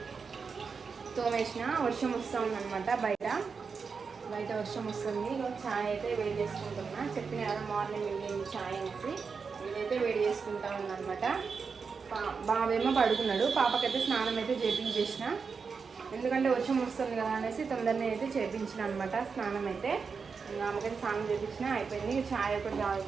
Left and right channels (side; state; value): left; quieter; 5.4 dB